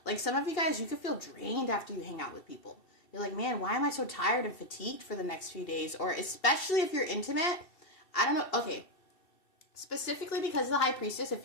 Like some of you guys, you could feel drained after you hang out with people. You're like, man, why am I so tired and fatigued for the next few days? Or especially if you're intimate, I don't know, okay. Specifically because of the High Priestess,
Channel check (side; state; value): right; late; 2.7 ms